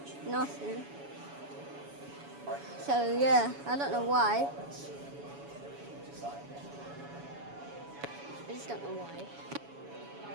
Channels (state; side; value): late; left; 7.1 ms